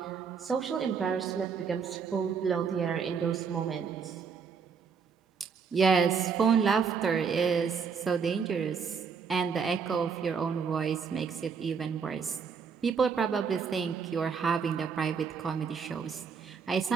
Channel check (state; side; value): quieter; left; 6.1 dB